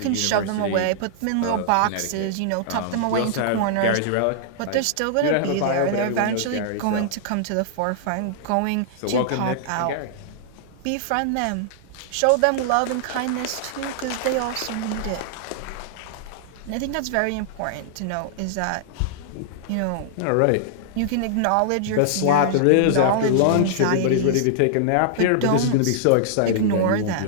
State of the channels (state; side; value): different; both; correlation -0.01